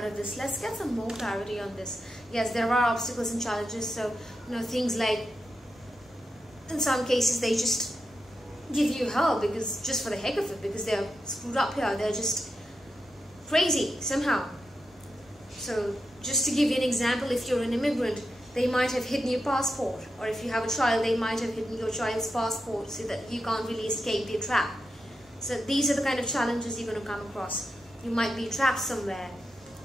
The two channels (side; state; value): both; normal; correlation 0.88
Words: of this. Let's get some more clarity on this. Yes, there are obstacles and challenges. So, things like, in some cases, they just give you hell because just for the heck of it, because they're screwed up here. They're just crazy somehow. So just to give you an example, if you're an immigrant, they might have hidden your passport, or if you have a child, they might have hidden your child's passport so that you can't really escape their trap. So these are the kind of challenges you're going to come across. You might be trapped somewhere,